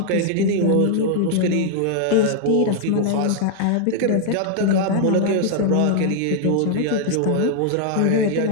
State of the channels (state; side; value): different; both; correlation 0.00